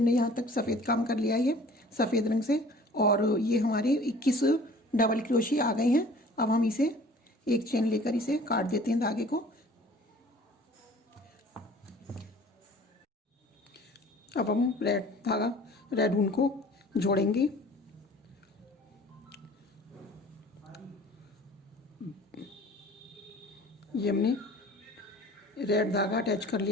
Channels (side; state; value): both; normal; correlation 0.48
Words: यहाँ तक सफ़ेद काम कर लिया है सफ़ेद रंग से, और ये हमारे 21 डबल क्रोशिया आ गए हैं। अब हम इसे एक चेन लेकर इसे काट देते हैं धागे को। अब हम रेड ऊन को जोड़ेंगे। ये हमने रेड धागा अटैच कर